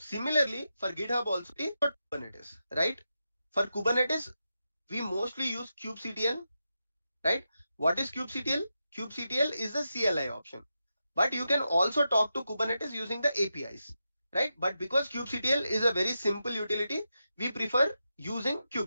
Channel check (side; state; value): both; inverted; correlation -0.88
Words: for GitHub also, Kubernetes, right? For Kubernetes, we mostly use kubectl, right? What is kubectl? Kubectl is the CLI option, but you can also talk to Kubernetes using the APIs, right? But because kubectl is a very simple utility, we prefer using